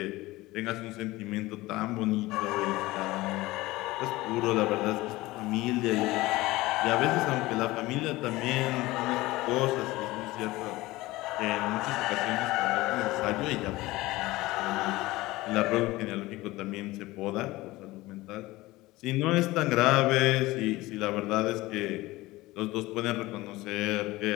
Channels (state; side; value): quieter; right; 19.3 dB